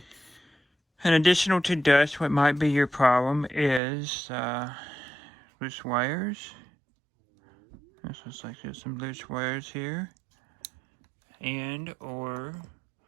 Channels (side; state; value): left; drops out; at 3.8 s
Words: And additional to dust, what might be your problem is loose wires. This looks like there's some loose wires here. And or